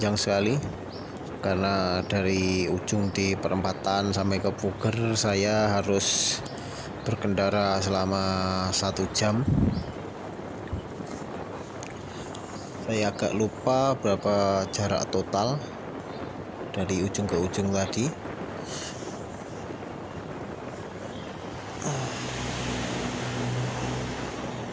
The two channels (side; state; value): both; identical; correlation 1.00